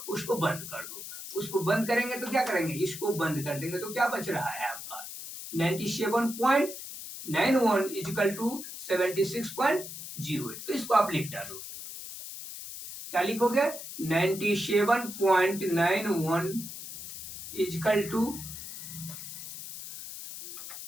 उसको बंद कर दो। उसको बंद करेंगे तो क्या करेंगे, इसको बंद कर देंगे तो क्या बच रहा है आपका 97.91 इक्वल टू 76.08। तो इसको आप लिख डालो। क्या लिखोगे 97.91 इक्वल टू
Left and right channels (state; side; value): noise; left; hiss, 10 dB below the sound